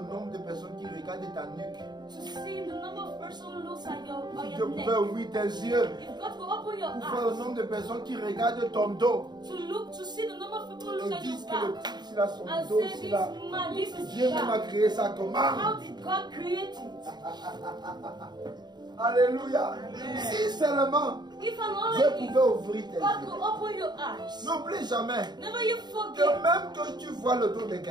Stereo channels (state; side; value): late; left; 0.20 ms